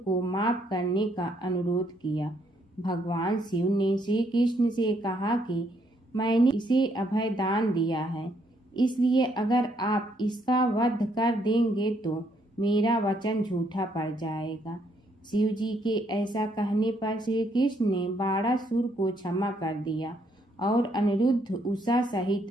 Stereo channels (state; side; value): normal; both; correlation 0.71